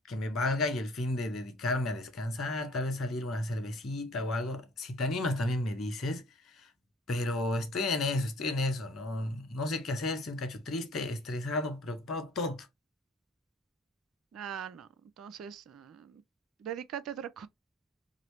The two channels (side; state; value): both; normal; correlation 0.53